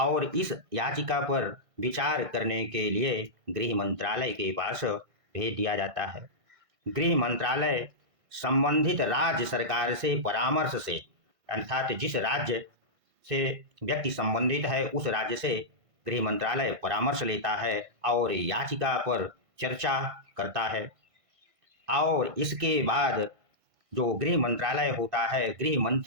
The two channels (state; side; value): late; left; 1.5 ms